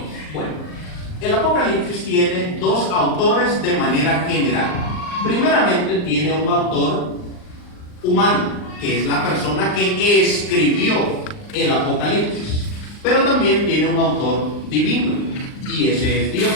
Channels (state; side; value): late; right; 39 ms